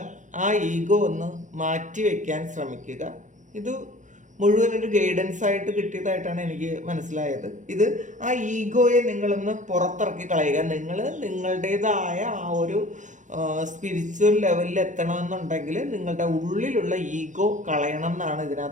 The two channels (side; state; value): left; late; 0.36 ms